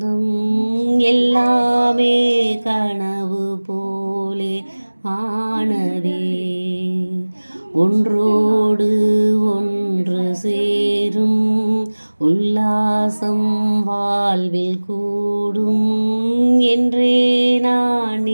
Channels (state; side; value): inverted; both; correlation -1.00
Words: எல்லாமே கனவு போலே ஆனதே. ஒன்றோடு ஒன்று சேரும் உல்லாசம் வாழ்வில் கூடும் என்றே நான்